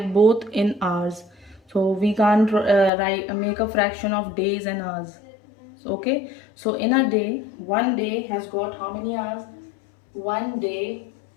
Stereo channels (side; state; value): right; drops out; at 2.9 s